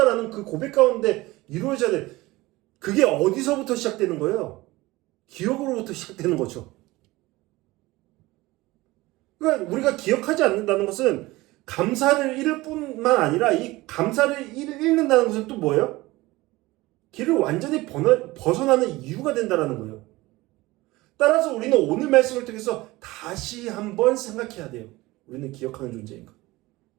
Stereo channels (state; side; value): quieter; left; 19.9 dB